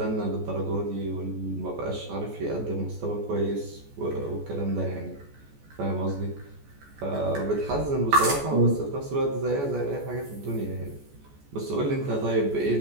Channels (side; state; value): left; late; 14 ms